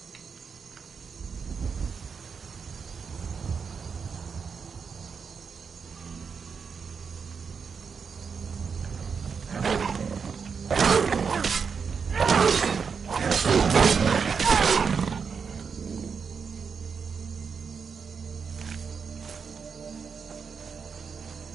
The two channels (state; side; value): quieter; left; 6.0 dB